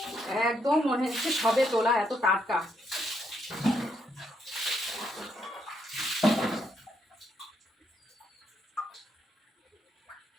একদম মনে হচ্ছে সবে তোলা, এত টাটকা।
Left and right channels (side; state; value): both; normal; correlation 0.76